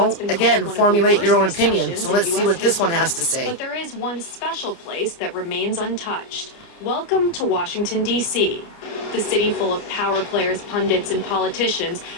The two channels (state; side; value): late; right; 29 ms